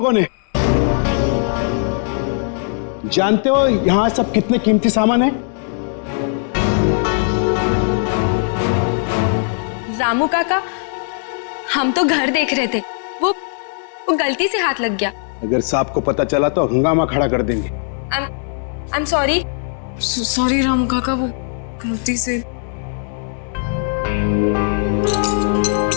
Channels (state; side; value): silent; right; 66 dB below the other